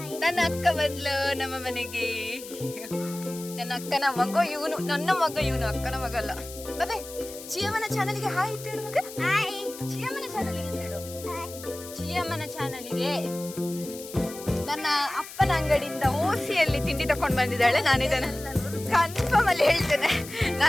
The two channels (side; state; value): left; noise; hiss, 14 dB below the sound